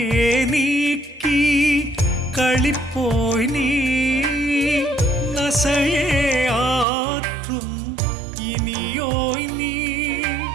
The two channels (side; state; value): left; drops out; at 6.9 s